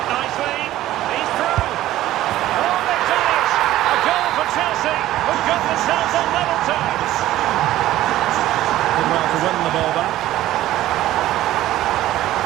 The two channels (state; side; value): quieter; left; 14.6 dB